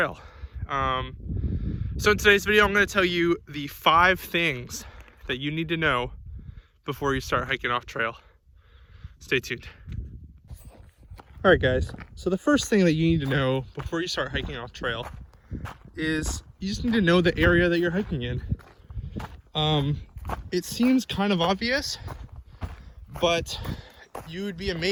So in today's video, I'm going to tell you the 5 things that you need to know before you start hiking off trail. Stay tuned. All right, guys, so the first thing that you need to know before you start hiking off trail is you just need to know the area that you're hiking in. It seems kind of obvious, but you would be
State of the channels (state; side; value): identical; both; correlation 1.00